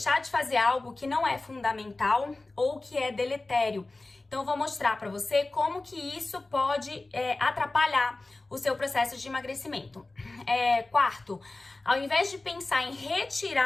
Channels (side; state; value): right; quieter; 3.1 dB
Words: de fazer algo que não é fundamental ou que é deletério. Então, eu vou mostrar para você como que isso pode atrapalhar o seu processo de emagrecimento. Quarto, ao invés de pensar em